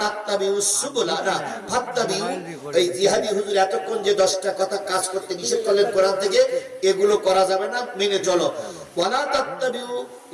তাত্তাবিউস সুবুলা ফাত্তাবিউ। এই জিহাদি হুজুর এতক্ষণ যে 10টা কথা কাজ করতে নিষেধ করলেন কোরআন থেকে, এগুলো করা যাবে না, মেনে চলো। ওয়ালা তাত্তাবিউ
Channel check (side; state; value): both; identical; correlation 1.00